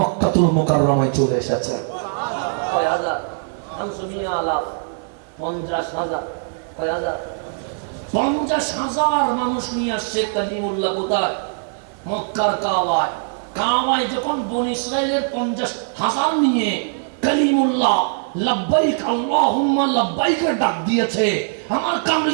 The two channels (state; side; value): silent; left; digital silence